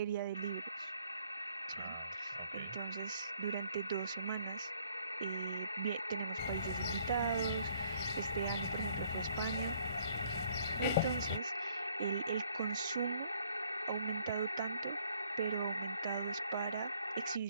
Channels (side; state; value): both; inverted; correlation -0.64